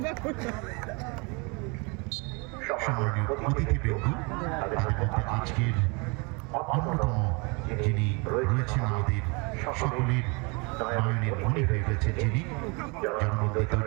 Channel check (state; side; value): quieter; left; 30.5 dB